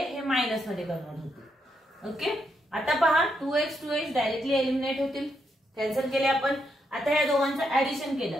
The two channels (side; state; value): both; normal; correlation 0.80